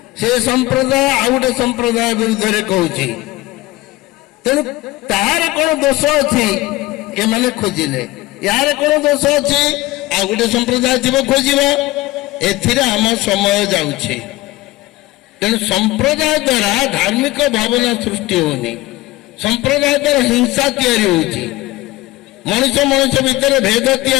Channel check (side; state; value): right; quieter; 18.9 dB